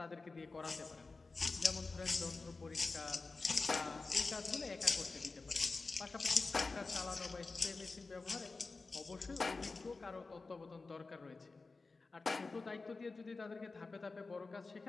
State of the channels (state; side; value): quieter; right; 3.9 dB